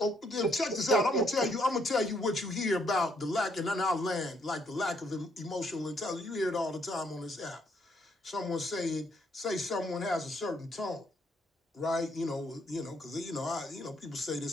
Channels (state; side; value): normal; both; correlation 0.71